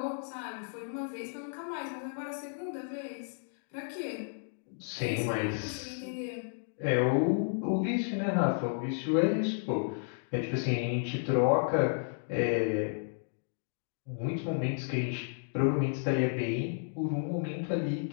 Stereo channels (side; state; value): right; silent; digital silence